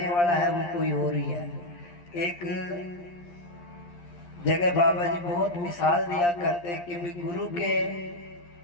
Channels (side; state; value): right; late; 11 ms